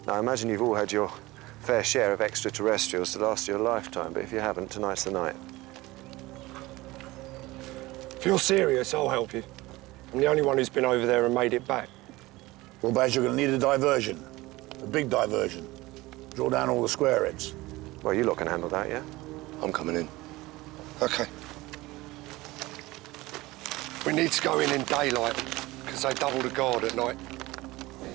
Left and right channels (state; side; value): quieter; left; 19.9 dB